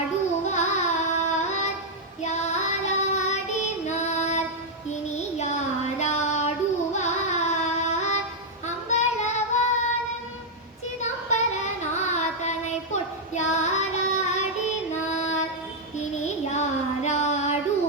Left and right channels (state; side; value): normal; both; correlation -0.03